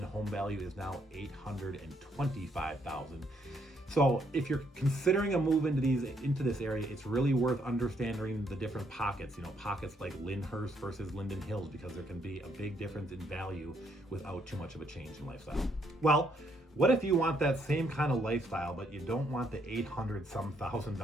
home value is now $825,000. So if you're considering a move into this area, it's really worth understanding the different pockets, pockets like Lyndhurst versus Linden Hills, because there can be a big difference in value without too much of a change in lifestyle. Well, what if you want that same kind of lifestyle, but you don't want the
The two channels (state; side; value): normal; both; correlation 0.72